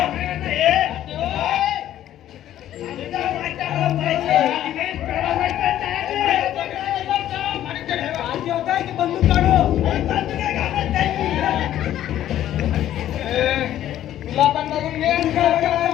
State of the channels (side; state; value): right; quieter; 12.2 dB